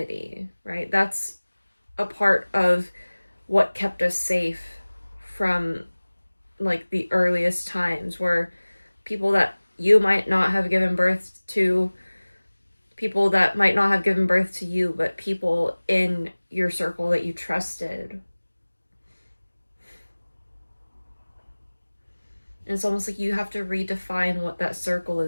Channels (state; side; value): inverted; both; correlation -1.00